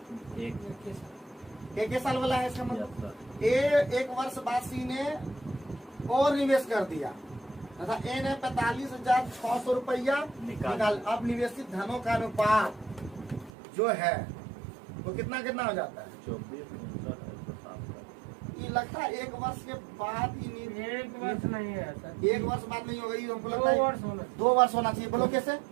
एक साल वाला है इसका मतलब। 1 वर्ष बाद C ने और निवेश कर दिया तथा A ने 45,600 रुपया निकाल। अब निवेशित धनों का अनुपात जो है वो कितना हो जाता है? 24। ये लगता है 1 वर्ष के बाद ही 1 वर्ष नहीं है सर। 1 वर्ष बाद नहीं होगा, ये हमको लगता है 2 वर्ष होना। 2 वर्ष होना चाहिए। बोलो कैसे?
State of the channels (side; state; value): left; drops out; at 13.5 s